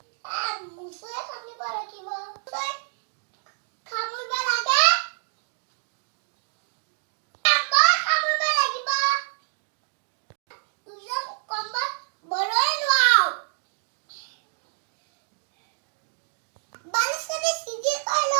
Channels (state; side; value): silent; left; 59 dB below the other